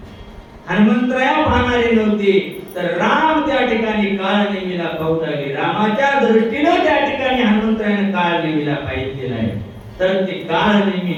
हनुमंतराया पाहणारे नव्हते तर राम त्या ठिकाणी काळनेमीला पाहू लागले. रामाच्या दृष्टीने त्या ठिकाणी हनुमंतरायाने काळनेमीला पाहिलेलं आहे. तर ते काळनेमी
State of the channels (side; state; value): both; identical; correlation 1.00